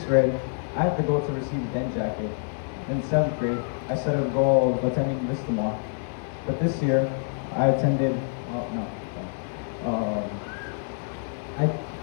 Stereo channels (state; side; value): silent; right; digital silence